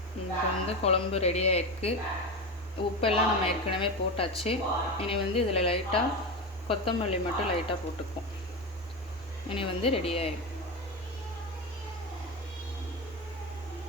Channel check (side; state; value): both; normal; correlation 0.19